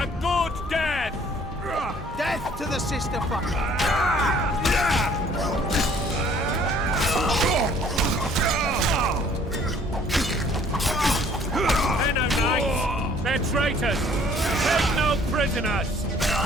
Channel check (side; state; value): both; normal; correlation 0.57